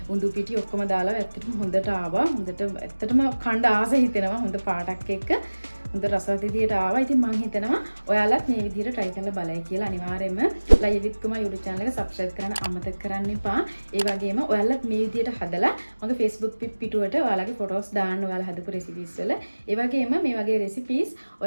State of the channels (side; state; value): both; inverted; correlation -1.00